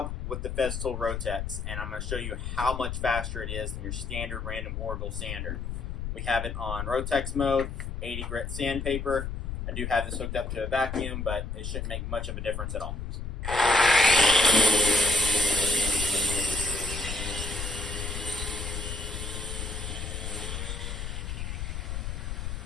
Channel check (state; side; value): noise; left; rumble, 5 dB below the sound